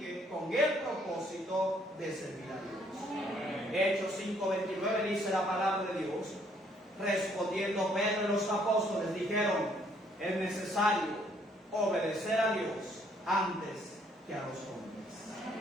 con el propósito de servir a Dios. Amén. Hechos 5:29 dice la palabra de Dios: respondiendo Pedro y los apóstoles dijeron: es necesario obedecer a Dios antes que a los hombres.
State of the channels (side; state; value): both; normal; correlation 0.66